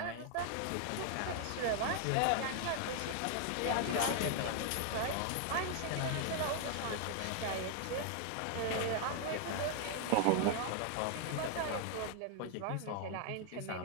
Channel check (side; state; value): both; different; correlation 0.00